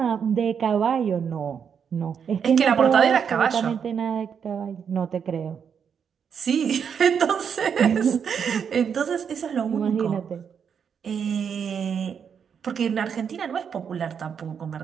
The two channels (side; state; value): left; quieter; 7.2 dB